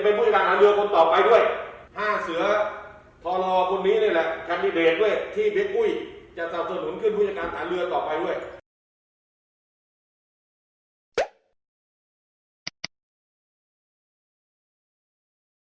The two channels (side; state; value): both; identical; correlation 1.00